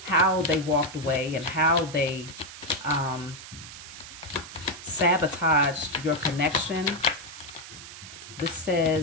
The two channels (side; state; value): right; noise; hiss, 14 dB below the sound